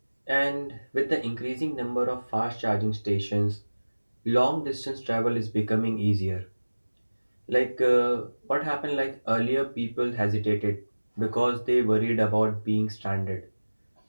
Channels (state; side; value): inverted; both; correlation -1.00